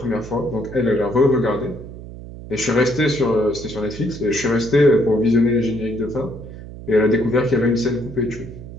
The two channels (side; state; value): right; noise; hum, 13 dB below the sound